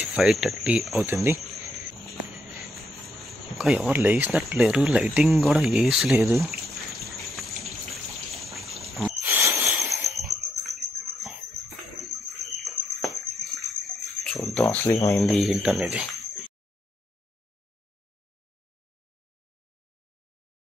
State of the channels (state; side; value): normal; both; correlation 0.76